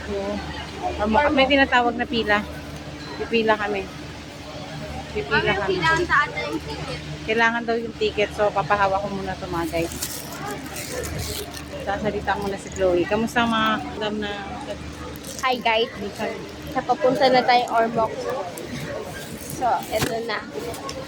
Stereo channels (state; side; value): identical; both; correlation 1.00